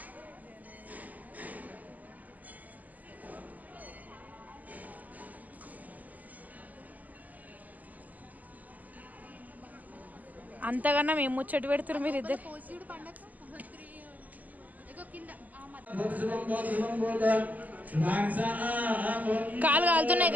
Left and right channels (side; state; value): left; late; 0.079 ms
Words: అంతకన్నా మేము ముచ్చట పెడుతున్నారు మీరు ఇద్దరు. కాలు కాలుతున్నాయి